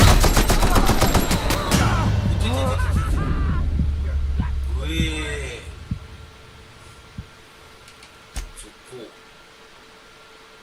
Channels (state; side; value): identical; both; correlation 1.00